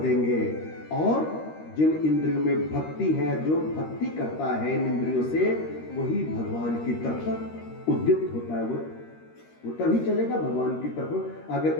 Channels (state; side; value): late; right; 13 ms